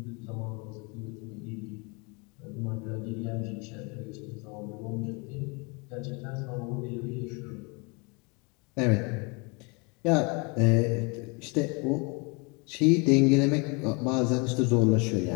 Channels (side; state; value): right; quieter; 30.8 dB